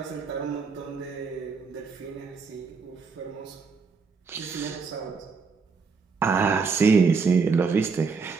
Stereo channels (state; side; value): quieter; left; 5.1 dB